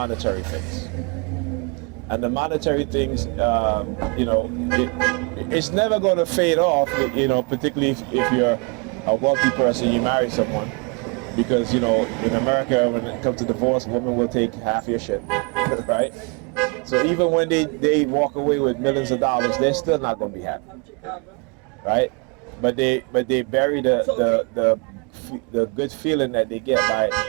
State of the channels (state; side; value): quieter; left; 32.4 dB